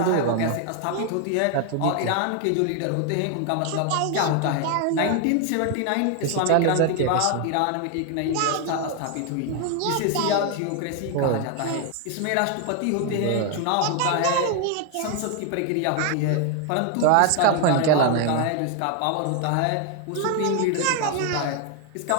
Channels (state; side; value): different; both; correlation 0.01